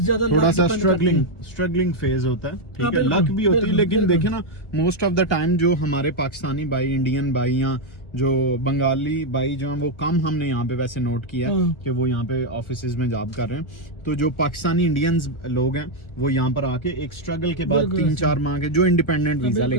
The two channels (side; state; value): right; late; 1.3 ms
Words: थोड़ा सा depend करती है। स्ट्रगलिंग फेज होता है, ठीक है। बिल्कुल, लक भी होती है, बिल्कुल, लेकिन बिल्कुल। देखे ना मोस्ट ऑफ द टाइम जो हमारे पाकिस्तानी भाई, इंडियन भाई या जो बंगाली भाई जो हैं वो कम हमने यहाँ पे वैसे नोट किया है कि वो यहाँ पे ऑफिसेज में जॉब कर रहे हैं। तो जो पाकिस्तानी इंडियंस लोग हैं वो यहाँ पर आके एक स्ट्रगल के बाद 3-4 माह के जो इंडिपेंडेंट वीजा